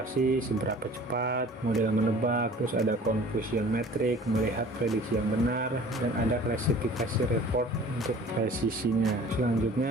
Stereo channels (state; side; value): normal; both; correlation 0.47